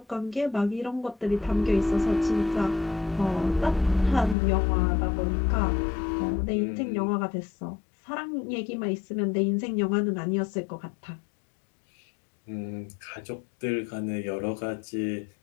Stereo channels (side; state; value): right; drops out; at 4.4 s